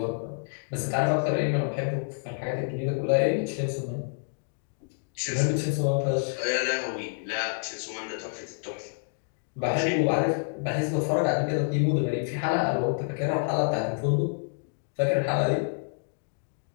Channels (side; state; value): right; silent; digital silence